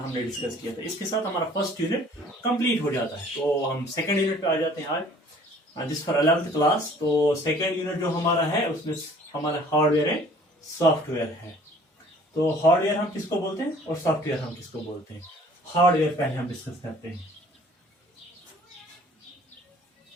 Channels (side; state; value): both; normal; correlation 0.53